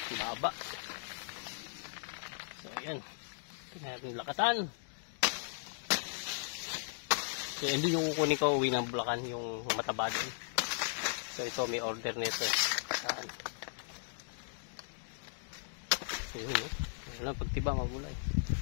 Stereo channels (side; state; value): right; silent; digital silence